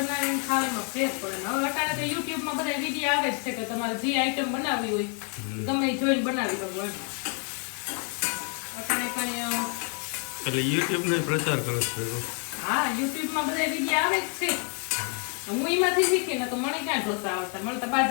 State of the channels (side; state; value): right; quieter; 39.9 dB